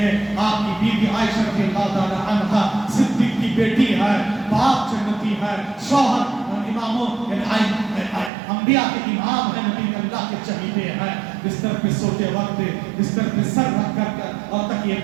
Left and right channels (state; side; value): drops out; left; at 8.3 s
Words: آپ کی بیوی عائشہ رضی اللہ تعالی عنہا، صدیق کی بیٹی ہے، باپ جنتی ہے، شوہر اماموں انبیاء کے امام ہے، نبی اللہ کے چہیتے ہیں. بستر پہ سوتے وقت بستر پہ سر رکھ کر اور تکیے